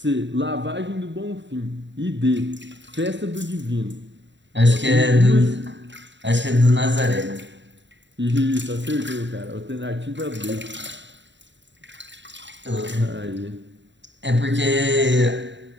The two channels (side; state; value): left; late; 0.53 ms